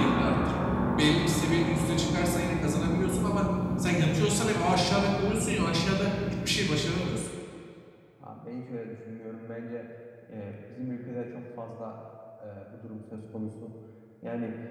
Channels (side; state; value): both; identical; correlation 1.00